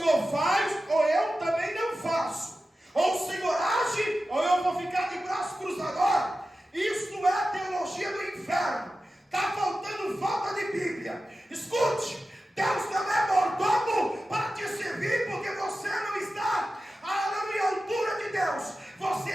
faz, ou eu também não faço. Ou o Senhor age, ou eu vou ficar de braço cruzado. Isso é a teologia do inferno. Está faltando falta de Bíblia. Escute, Deus não é mordomo para te servir, porque você não está à altura de Deus. Você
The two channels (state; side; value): normal; both; correlation 0.93